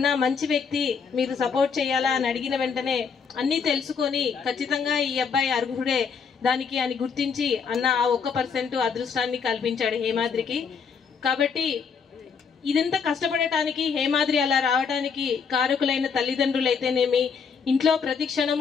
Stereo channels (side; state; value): right; quieter; 6.0 dB